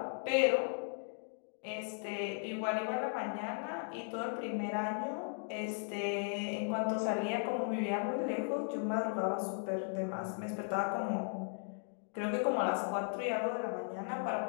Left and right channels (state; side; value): silent; right; 53 dB below the other